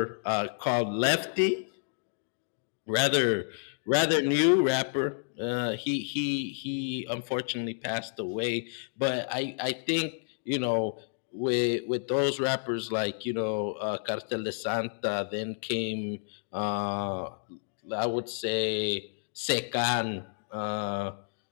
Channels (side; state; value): right; silent; digital silence